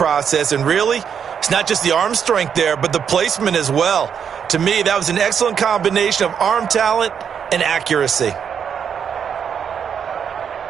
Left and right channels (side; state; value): left; quieter; 7.6 dB